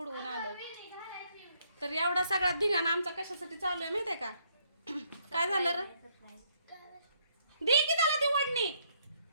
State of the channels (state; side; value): inverted; both; correlation -0.70